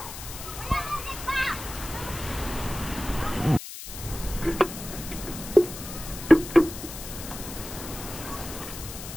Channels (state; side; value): noise; left; hiss, 10 dB below the sound